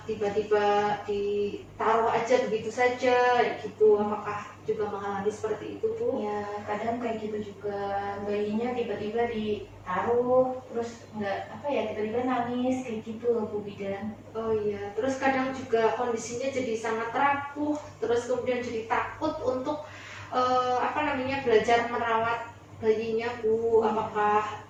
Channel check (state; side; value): identical; both; correlation 1.00